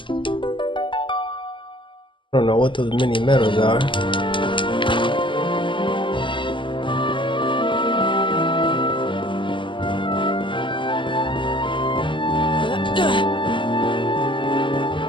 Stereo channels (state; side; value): late; right; 0.24 ms